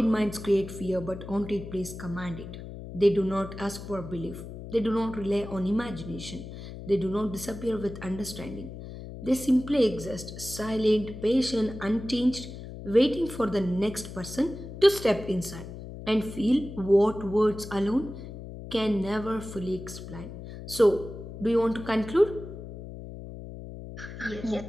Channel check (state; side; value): noise; left; hum, 11 dB below the sound